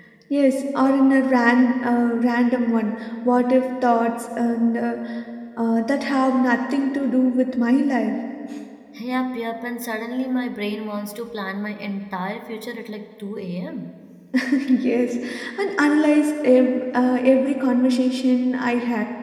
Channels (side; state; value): both; identical; correlation 1.00